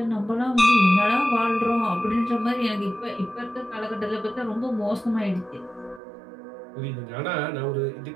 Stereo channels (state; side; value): drops out; left; at 6.0 s